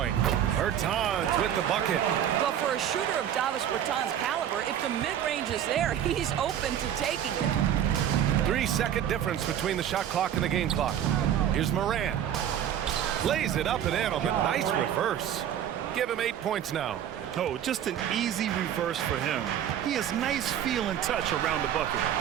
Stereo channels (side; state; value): left; quieter; 10.1 dB